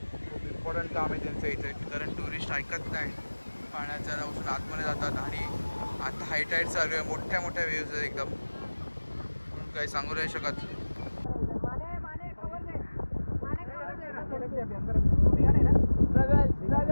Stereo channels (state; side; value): inverted; both; correlation -1.00